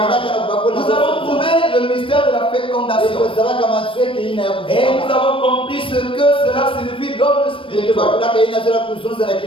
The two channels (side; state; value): right; late; 0.25 ms